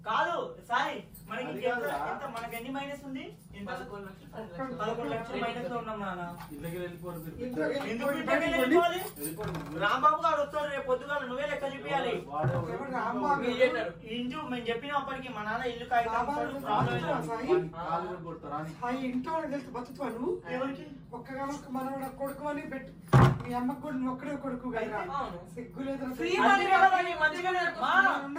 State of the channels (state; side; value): identical; both; correlation 1.00